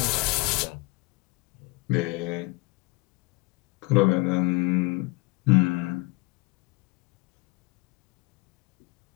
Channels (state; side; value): quieter; right; 24.9 dB